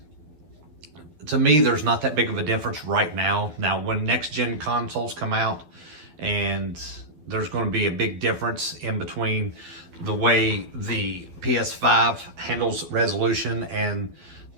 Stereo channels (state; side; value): late; left; 12 ms